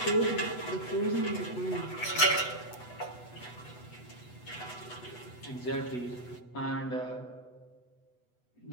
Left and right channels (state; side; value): late; right; 8.1 ms